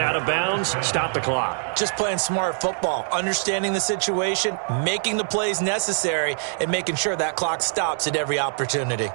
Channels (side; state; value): left; silent; digital silence